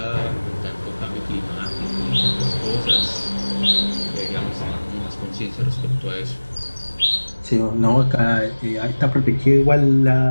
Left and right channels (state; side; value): inverted; both; correlation -1.00